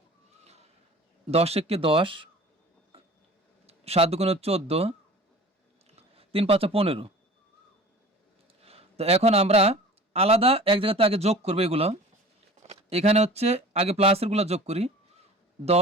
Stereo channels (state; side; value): normal; both; correlation 0.42